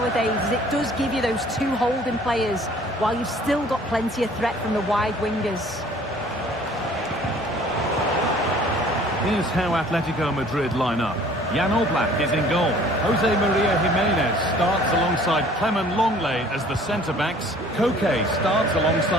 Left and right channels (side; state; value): both; normal; correlation 0.53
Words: as it does give you those two holding players, while you've still got plenty of threat from the wide wingers. Here's how Atletico Madrid line up. Jan Oblak is in goal. Jose Maria Jimenez starts alongside Clement Longley as the centre-backs. Koke starts